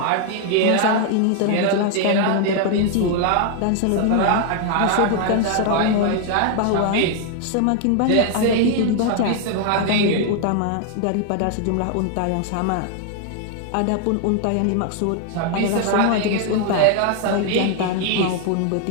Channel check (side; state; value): both; different; correlation 0.00